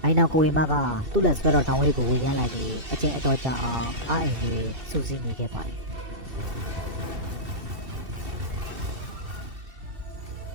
အိုင်နောက်ကိုဝေမကသူ့လက်ဆွဲတော်တောင်းလေးကိုဝေရမ်းလိုက်ပြီးအချင်းအတော်ကြာအောင်အားအိမ်လေးစူးစီးနေခဲ့ပါတယ်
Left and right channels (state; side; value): late; left; 2.7 ms